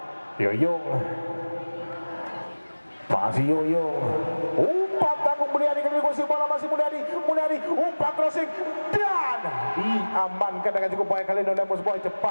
Yoyong, masih Yoyong, umpan tanggung Mulyadi kali ini kuasai bola, masih Mulyadi umpan crossing dan diamankan dengan cukup baik kali ini oleh Mus Boy.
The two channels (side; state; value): both; inverted; correlation -1.00